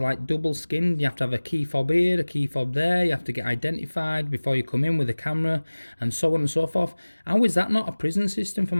like double skinned. You have to have a key fob here, a key fob there. You have to get identified before you come in with a camera, and so on and so forth. How is that not a prison system for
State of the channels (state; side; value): inverted; both; correlation -1.00